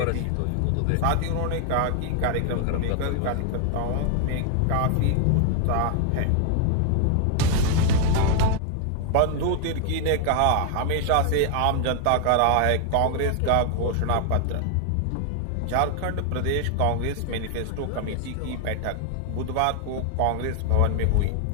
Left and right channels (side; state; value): both; different; correlation 0.00